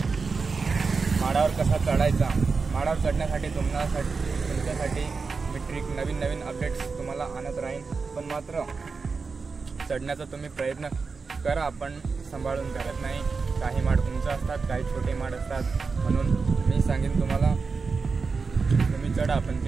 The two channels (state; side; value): quieter; left; 4.7 dB